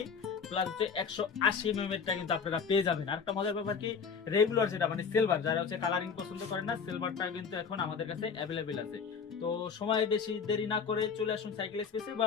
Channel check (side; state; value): right; quieter; 6.0 dB